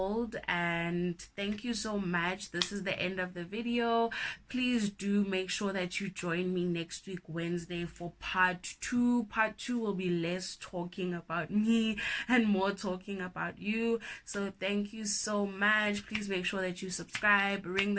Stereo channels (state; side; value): identical; both; correlation 1.00